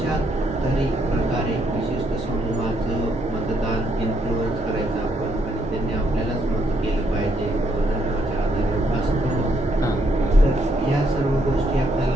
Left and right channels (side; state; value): both; normal; correlation 0.73